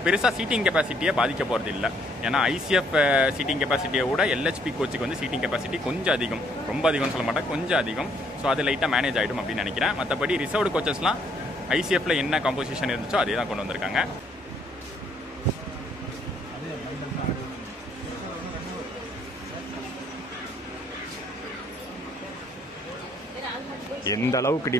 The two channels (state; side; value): normal; both; correlation 0.66